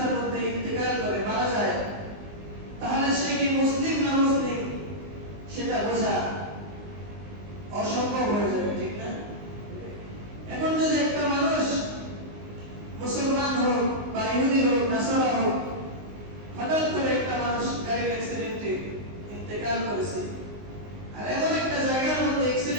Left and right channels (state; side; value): late; left; 19 ms